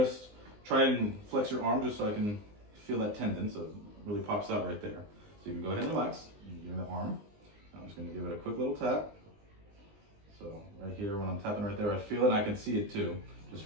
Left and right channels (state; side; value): late; left; 19 ms